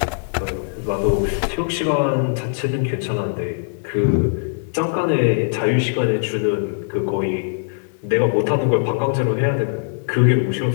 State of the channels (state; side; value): silent; right; digital silence